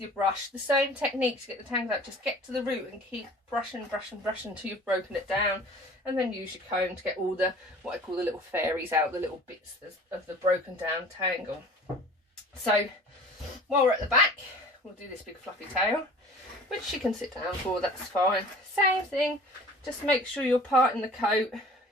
brush. The same technique to get the tangles out, just get to the root and keep brushing until you've broken it down, and then use your comb to get all the, what I call the little fairies out, the little bits of the broken down tangle. So while we're at the back, we'll do this big fluffy tail, which she can sit down for, that's fine. Same thing, just make sure you're parting the coat, you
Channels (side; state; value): both; normal; correlation 0.45